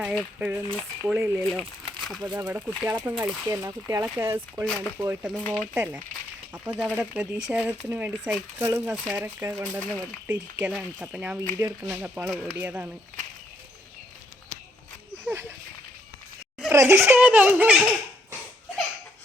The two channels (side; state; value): both; normal; correlation 0.73